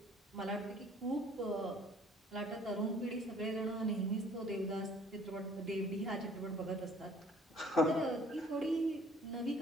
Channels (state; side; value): normal; both; correlation 0.56